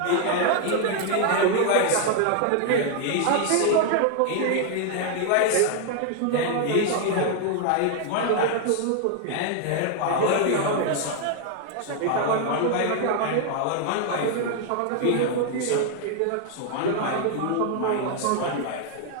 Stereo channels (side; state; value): both; different; correlation 0.00